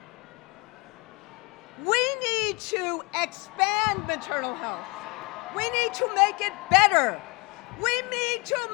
We need to expand maternal health. We need to make it better. We need to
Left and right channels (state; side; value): quieter; right; 27.0 dB